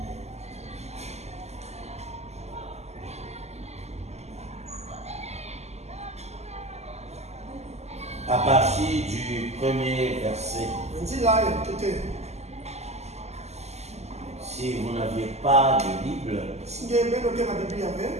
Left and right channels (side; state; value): left; late; 0.32 ms